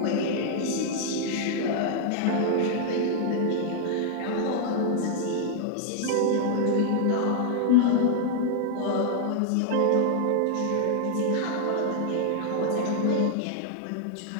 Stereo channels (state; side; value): different; both; correlation 0.00